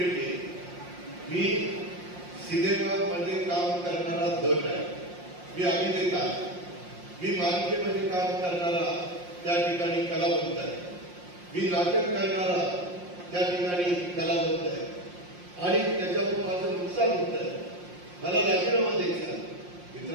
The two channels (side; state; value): left; late; 5.6 ms